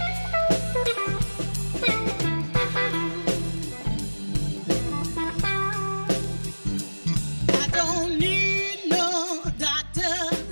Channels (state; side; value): inverted; both; correlation -1.00